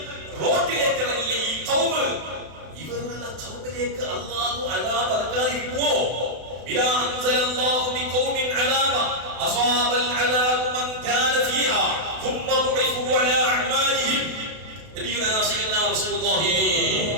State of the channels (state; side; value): late; left; 32 ms